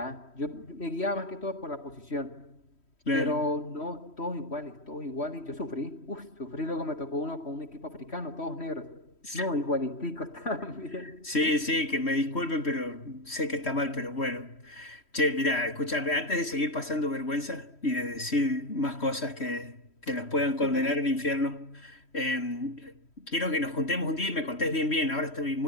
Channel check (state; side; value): late; right; 3.1 ms